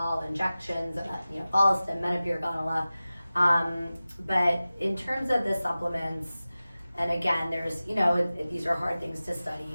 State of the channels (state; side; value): inverted; both; correlation -0.96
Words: injections, you know, Follistim, Menopur, Gonala. But in terms of the supplements, and again, there's, you know, these are hard things to